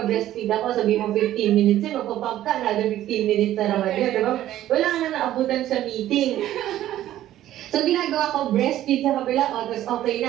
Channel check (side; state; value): left; quieter; 13.2 dB